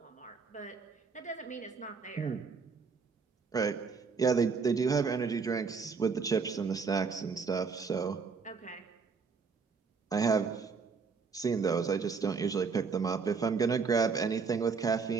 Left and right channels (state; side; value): quieter; left; 5.2 dB